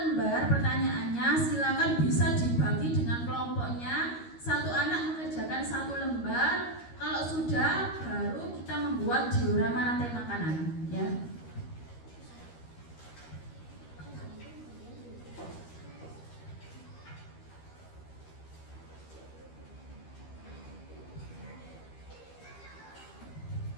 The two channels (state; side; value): late; right; 13 ms